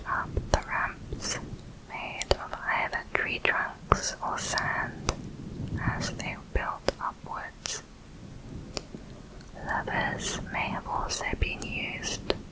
up the ramps made of either tree trunks or sand as they built upwards. Levers may have also been used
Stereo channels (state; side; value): identical; both; correlation 1.00